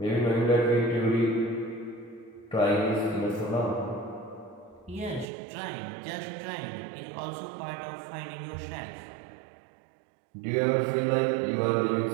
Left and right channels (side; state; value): left; drops out; at 5.3 s